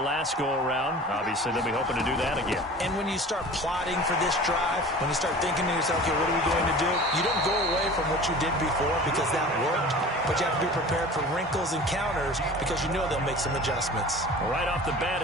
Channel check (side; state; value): both; normal; correlation 0.40